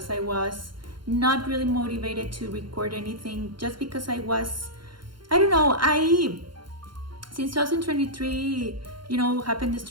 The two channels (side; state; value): left; late; 0.72 ms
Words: I was not really motivated to record anything, just because I don't know, since 2023, you know, happened the